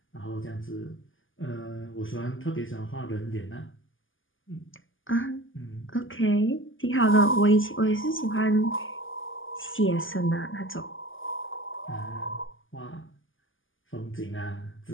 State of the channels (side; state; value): right; late; 0.58 ms